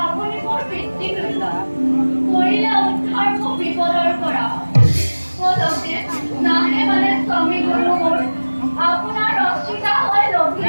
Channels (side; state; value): both; inverted; correlation -1.00